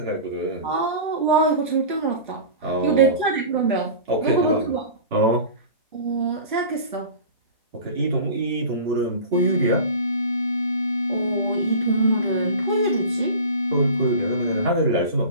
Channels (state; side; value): inverted; both; correlation -0.35